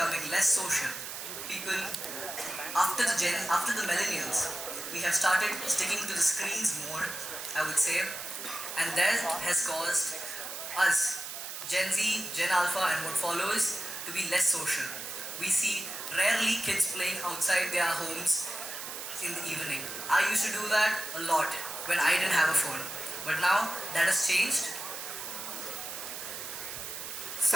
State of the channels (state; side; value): noise; right; hiss, 8 dB below the sound